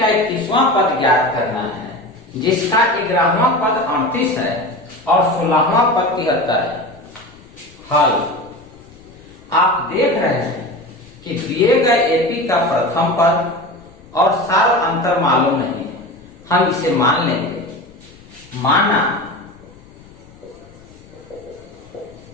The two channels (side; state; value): left; noise; rumble, 25 dB below the sound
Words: 31वां पद ज्ञात करना है जिसका 11वां पद 38 है और 16वां पद 73 है। हल, आप देख रहे हैं कि दिए गए AP का प्रथम पद और सार अंतर मालूम नहीं है, हम इसे मान लेंगे। माना